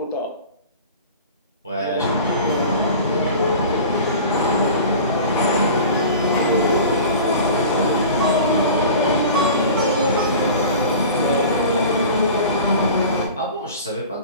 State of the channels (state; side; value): inverted; both; correlation -0.39